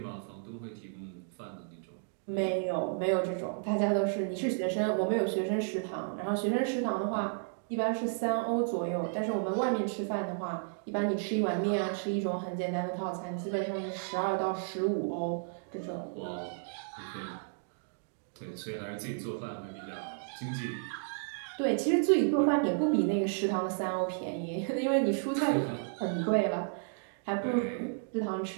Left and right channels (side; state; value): left; silent; digital silence